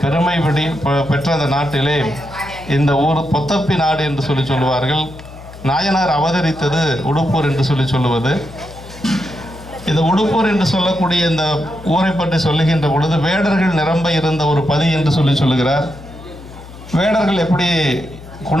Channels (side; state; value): left; noise; hum, 17 dB below the sound